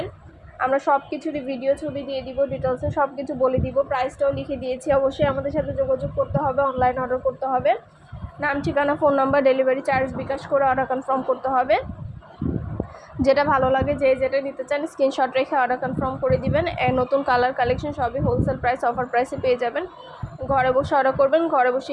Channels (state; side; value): identical; both; correlation 1.00